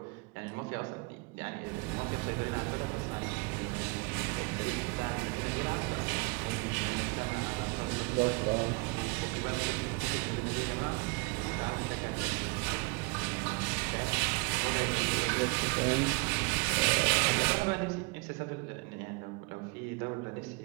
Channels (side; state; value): left; quieter; 29.4 dB